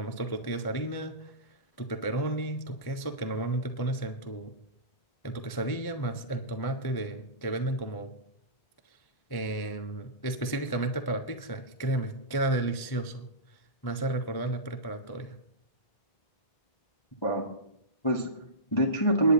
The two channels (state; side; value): late; right; 1.1 ms